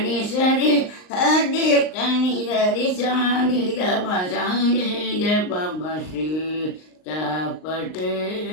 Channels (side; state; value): right; late; 39 ms